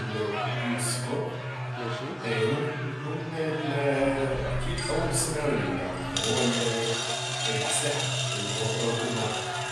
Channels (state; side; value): identical; both; correlation 1.00